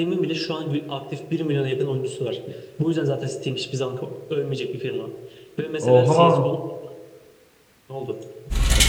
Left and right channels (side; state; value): both; identical; correlation 1.00